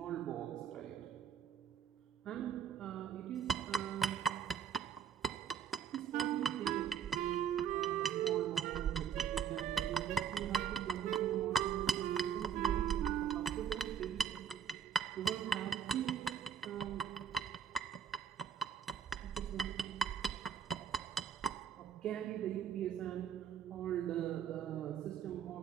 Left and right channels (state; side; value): quieter; left; 8.1 dB